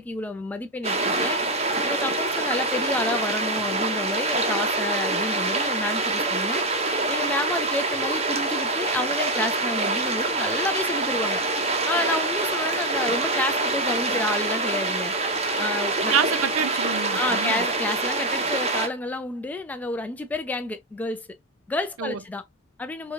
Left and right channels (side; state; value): both; normal; correlation 0.06